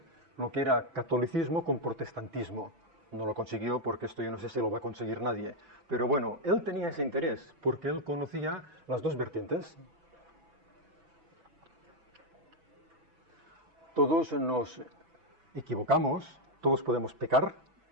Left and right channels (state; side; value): late; left; 6.0 ms